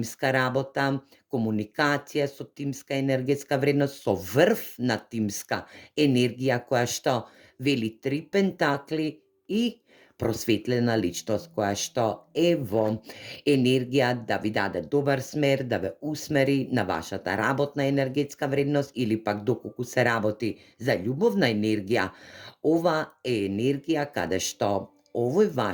работа, комуникација со тимска енергетска вредност, со врв на тимска енергија која што вели 3 пентакли и просветлена личност која што е во енергија да ви даде добар смер, да ве усмери на вашата работна енергетска вредност или пак доколку се работи за љубовна енергија. Ова е енергија каде што овој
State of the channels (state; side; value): identical; both; correlation 1.00